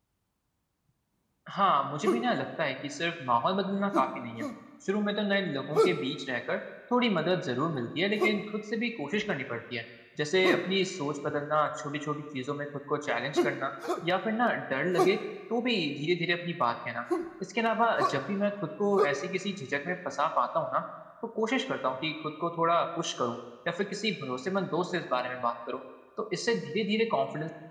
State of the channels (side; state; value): both; identical; correlation 1.00